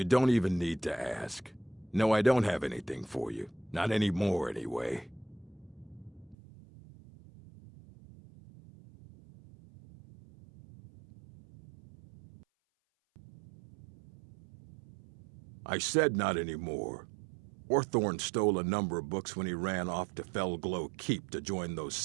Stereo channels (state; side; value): drops out; left; at 6.4 s